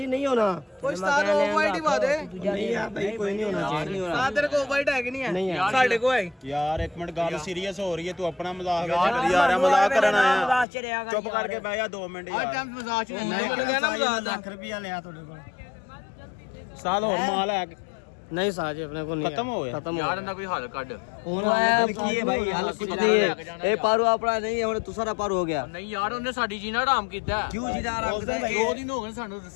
नहीं होना ਕੋਈ ਸਟਾਰ ਆਫ ਵਾਈਟ ਹੀ ਬਾਦੇ नहीं यार भाई कोई नहीं होना चाहिए ਸਾਹ ਤੇਰੇ ਕੋਲ ਵਾਈਟ ਹੈ ਕਿ ਨਹੀਂ ਹੈ नहीं यार ਸਾਡੇ ਕੋਲ ਹੈ ਯਾਰ ਇੱਕ ਮਿੰਟ ਗੱਲ ਸੀਰੀਅਸ ਹੋ ਰਹੀ ਹੈ ਤੂੰ ਆਪਣਾ ਮਜ਼ਾਕ ਵਿੱਚ ਕਰੀ ਜਾ ਰਿਹਾ ਮਜ਼ਾਕ ਕਰਨ ਆਇਆ ਮਜ਼ਾਕ ਚ ਰਿਹਾ ਕਰ ਚੁੱਪ ਕਰਕੇ ਬਹਿ ਜਾ 2 ਮਿੰਟ ਯਾਰ ਮਜ਼ਾਕ ਚ लाख रुपया लिया थोड़े को ਸਾਲ ਹੋਰ ਮਾਲ ਹੈ नहीं साजी अपने को नहीं खत्म हो गया खत्म ਯਾਰ ਇਹਨਾਂ ਕੋਈ ਹੱਲ ਕੱਢ की है भाई हाल कुछ नहीं है ए पारू अपना नहीं है हमने दूसरा पारू हो गया ਨਹੀਂ ਯਾਰ ਉਹਨੇ ਸਾਡੀ ਜੀਣਾ ਹਰਾਮ ਕੀਤਾ क्यों जीना आराम से 2 ਦਿਨ ਹੋ ਗਏ ਸਾਨੂੰ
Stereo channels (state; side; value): drops out; right; at 10.7 s